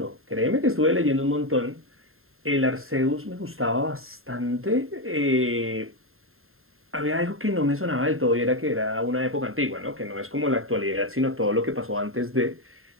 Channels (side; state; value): left; late; 0.61 ms